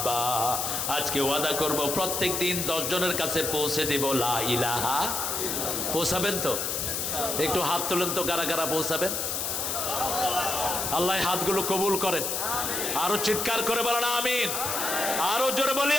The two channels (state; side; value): noise; left; hiss, 1 dB below the sound